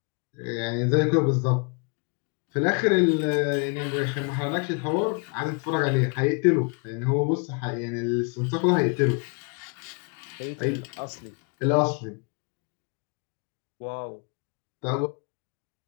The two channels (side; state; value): right; quieter; 36.0 dB